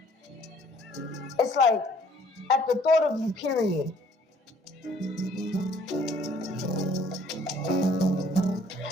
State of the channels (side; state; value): both; normal; correlation 0.59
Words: it's like, at the thought of you, period.